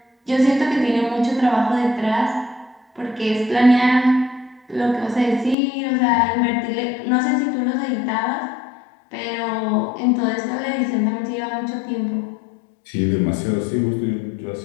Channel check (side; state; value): right; drops out; at 5.6 s